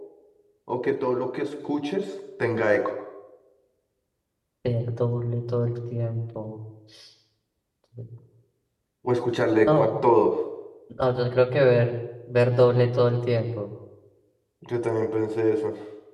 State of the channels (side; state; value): both; identical; correlation 1.00